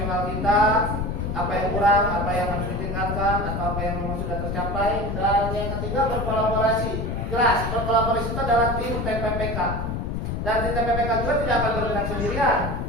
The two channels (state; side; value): noise; left; rumble, 2 dB below the sound